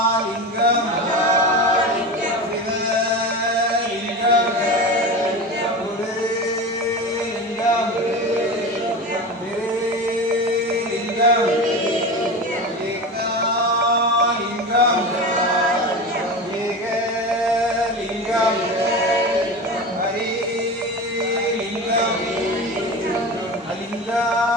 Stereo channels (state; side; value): normal; both; correlation 0.27